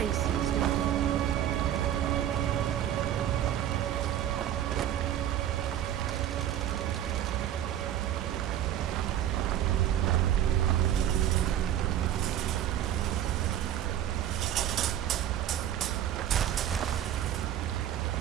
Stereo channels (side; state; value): left; quieter; 11.2 dB